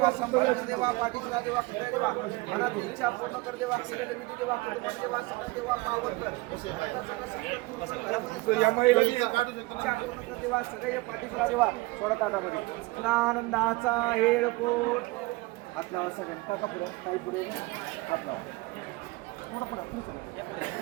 संभाळ देवा पाठीचा देवा खंड देवा मनात इच्छा पूर्ण कर देवा केलेले विधी देवा कुटुंब देवा सकल देवा पावन कर देवा सगळे पाठीचा देवा सोडा ताटामध्ये आनंदाचा हेळकोट हात लावा सगळ्यांनी टाका पुढे काही पुढे हात लावा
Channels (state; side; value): quieter; left; 22.1 dB